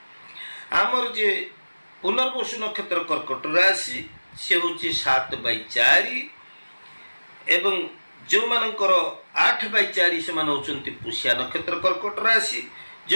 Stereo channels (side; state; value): both; inverted; correlation -1.00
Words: आमर जे पुनर्वसु नक्षत्र कर्कट राशि से होची 7/4 एवं जो मानकर 8/4 से मान होचंती पुष्या नक्षत्र कर्कट राशि,